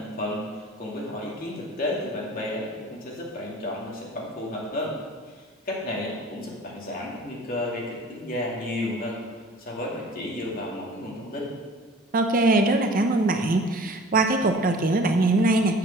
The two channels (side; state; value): both; normal; correlation 0.46